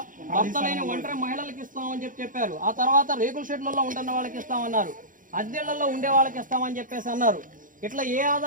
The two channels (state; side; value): late; left; 0.39 ms